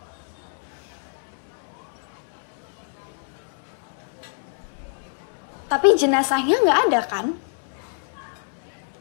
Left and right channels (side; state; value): right; silent; 61 dB below the other